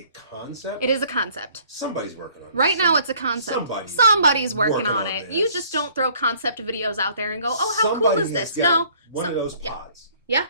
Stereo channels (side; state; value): both; inverted; correlation -0.58